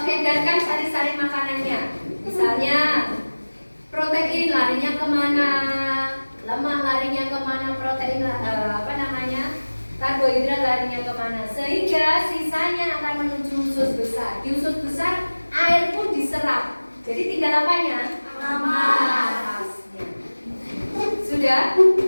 diedarkan sari-sari makanannya. Misalnya protein larinya kemana, lemak larinya kemana, protein karbohidrat larinya kemana? Sehingga sisanya akan menuju usus besar. Di usus besar air pun diserap. Jadi tinggal apanya? Amasnya. Sudah?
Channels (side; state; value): both; inverted; correlation -1.00